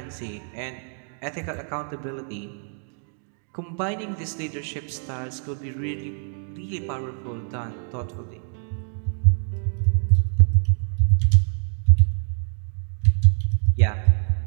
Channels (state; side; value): silent; left; 58 dB below the other